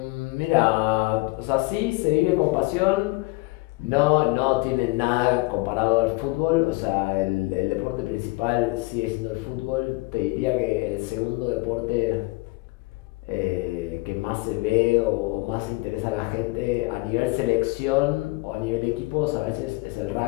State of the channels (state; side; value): quieter; right; 24.0 dB